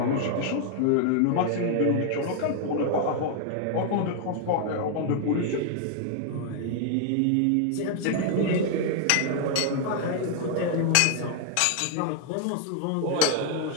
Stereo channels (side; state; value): both; different; correlation 0.00